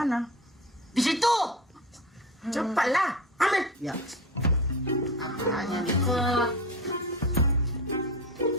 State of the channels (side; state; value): both; normal; correlation 0.29